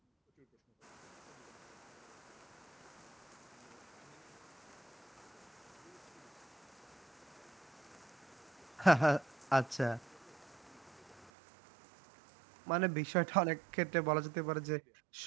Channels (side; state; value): left; drops out; at 11.3 s